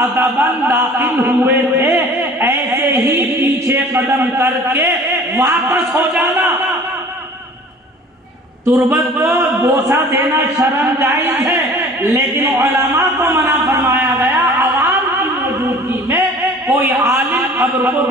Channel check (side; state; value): both; normal; correlation 0.46